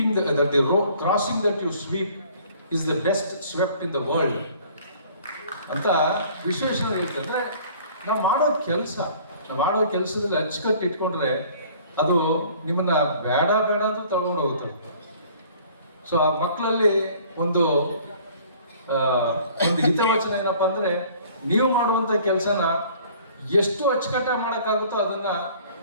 that the road crossing that you sweep is the best swept in the world ಅಂತ ವಿಶ್ವೇಶ್ವರಯ್ಯ ಹೇಳ್ತಿದ್ರೆ, ನಾವು ಮಾಡೋ ಕೆಲಸದಲ್ಲಿ ಅಚ್ಚುಕಟ್ಟು ಇಟ್ಕೊಂಡ್ರೆ ಅದು ನಿಮ್ಮನ್ನ ಬೇಡ ಅಂತ ತಗೊಂಡು ಹೋಗುತ್ತೆ. ಸೊ ಆ ಮಕ್ಕಳಲ್ಲಿ ಒಂದು ಹಿತವಚನ ಏನಪ್ಪ ಅಂದರೆ, ನೀವು ಮಾಡುವಂಥ ಕೆಲಸನ ಎಷ್ಟು ಅಚ್ಚುಕಟ್ಟಾಗಿ ಮಾಡೋಕ್ಕಾಗುತ್ತೋ ಅದನ್ನು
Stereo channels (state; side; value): inverted; both; correlation -0.52